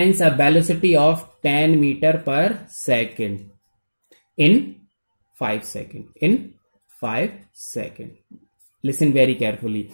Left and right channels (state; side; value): inverted; both; correlation -1.00